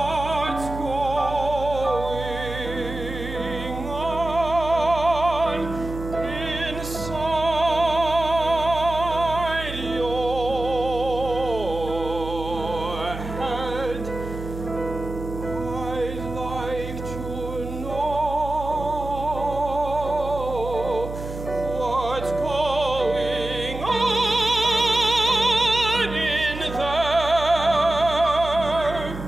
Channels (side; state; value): right; noise; hum, 9 dB below the sound